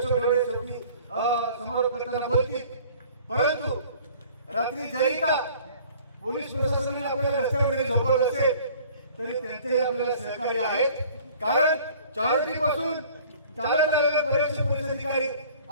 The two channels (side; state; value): both; inverted; correlation -0.51